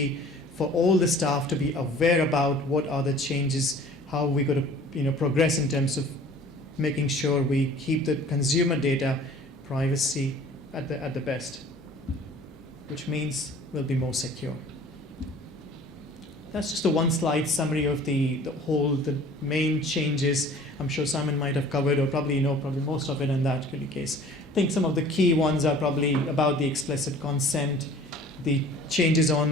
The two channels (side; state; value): both; normal; correlation 0.48